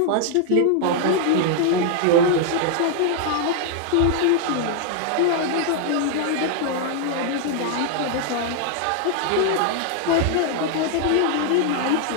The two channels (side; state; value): both; different; correlation 0.00